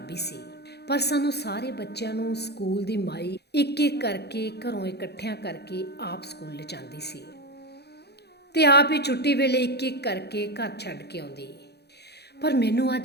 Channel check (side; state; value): right; late; 0.48 ms